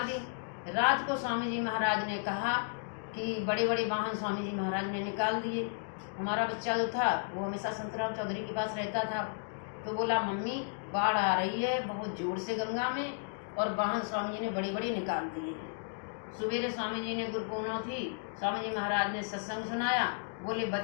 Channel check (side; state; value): right; silent; digital silence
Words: दी। रात को स्वामी जी महाराज ने कहा कि बड़े बड़े वाहन स्वामी जी महाराज ने निकाल दिए। हमारा बच्चा जो था वो हमेशा संतराम चौधरी के पास रहता था, तो बोला मम्मी बाढ़ आ रही है बहुत जोर से गंगा में, और वाहन स्वामी जी ने बड़े बड़े निकाल दिए हैं। सवेरे स्वामी जी ने गुरु पूर्णिमा थी, स्वामी जी महाराज ने सत्संग सुनाया। बोले